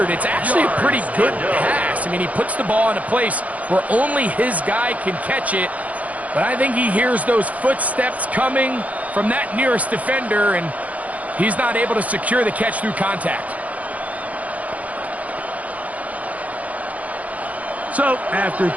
it's actually a pretty good pass. I mean, he puts the ball in a place where only his guy can catch it. But I think he hears those footsteps coming from that nearest defender, and he's not able to secure the catch through contact. So, after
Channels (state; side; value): late; left; 0.071 ms